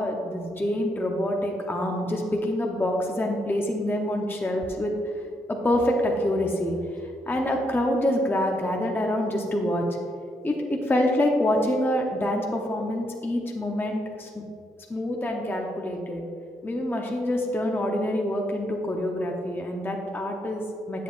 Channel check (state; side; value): normal; both; correlation 0.77